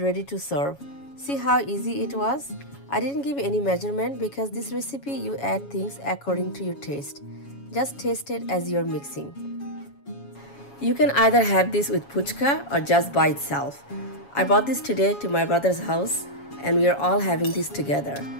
to serve. See how easy it was? I didn't give any measurement because this recipe you add things according to your taste. Just taste it as you're mixing. You can either have this with puchka or just by itself. I brought this today to my brother's house and we are all having this together.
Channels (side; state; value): right; late; 7.2 ms